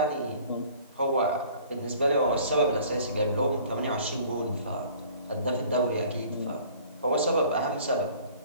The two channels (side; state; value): both; inverted; correlation -0.51